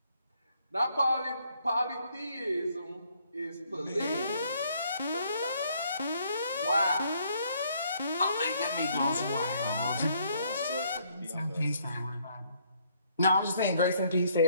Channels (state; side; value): inverted; both; correlation -0.67